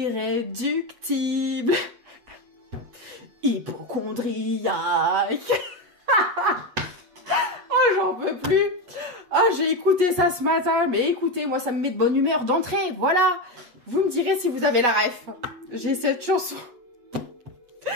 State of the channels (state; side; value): late; left; 8.2 ms